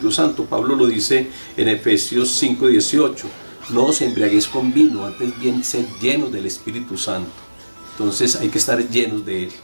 Santo. Pablo lo dice en Efesios 5:18: no os embriaguéis con vino, antes bien ser llenos del Espíritu Santo. Entonces hay que estar llenos de él.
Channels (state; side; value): inverted; both; correlation -1.00